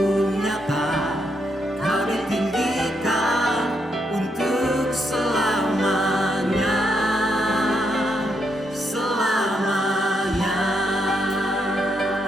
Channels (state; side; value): normal; both; correlation 0.78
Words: nyata, Kau ditinggikan untuk selamanya. Selamanya.